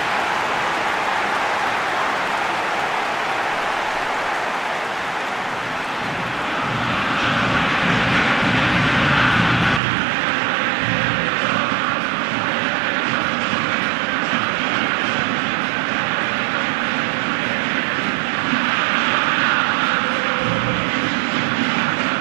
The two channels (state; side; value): drops out; left; at 9.8 s